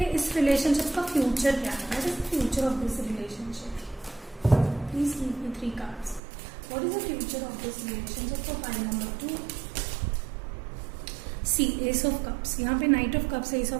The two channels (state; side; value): drops out; left; at 6.2 s